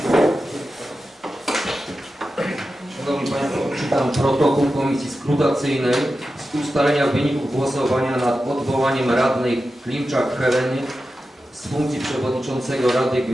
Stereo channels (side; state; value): both; normal; correlation 0.92